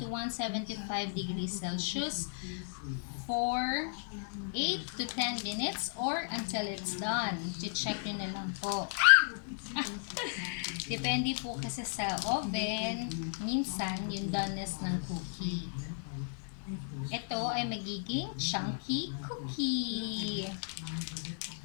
175 degrees Celsius for 8 to 10 minutes or until it's done. I-check nyo na lang po. Depende po kasi sa oven, minsan yung doneness ng cookie. Ito ay magiging chunky cookie.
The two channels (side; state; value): right; silent; digital silence